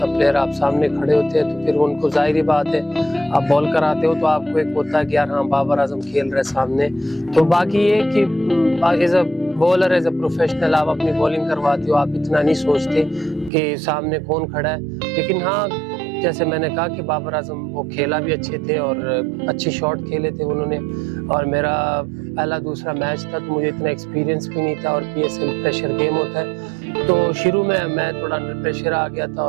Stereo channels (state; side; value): drops out; left; at 13.5 s